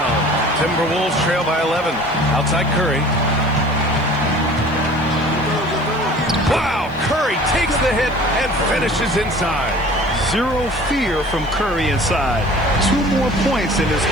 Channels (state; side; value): noise; right; hiss, 30 dB below the sound